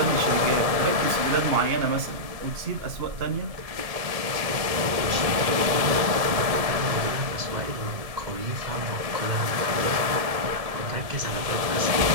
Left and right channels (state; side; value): late; left; 1.7 ms